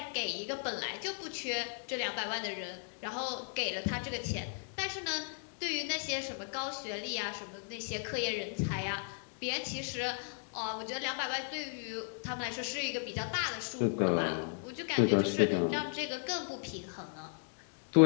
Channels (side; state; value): right; silent; 54 dB below the other